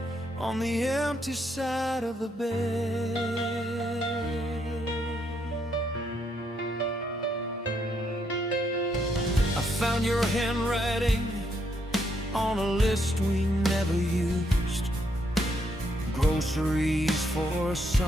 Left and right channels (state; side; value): normal; both; correlation 0.75